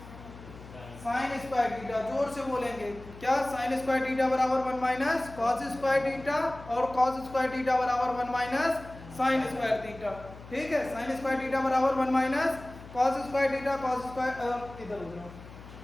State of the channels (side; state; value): left; noise; hum, 17 dB below the sound